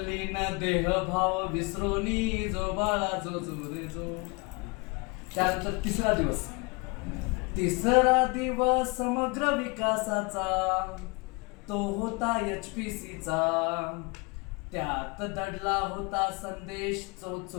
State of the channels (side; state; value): right; quieter; 28.6 dB